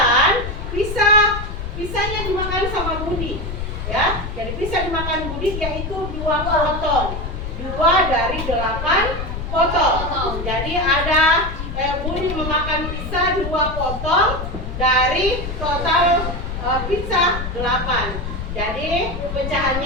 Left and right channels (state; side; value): noise; left; rumble, 6 dB below the sound